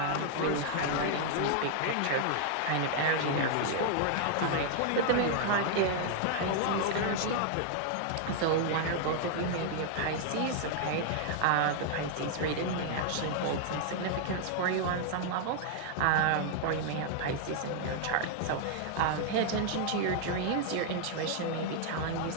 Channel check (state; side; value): different; both; correlation 0.00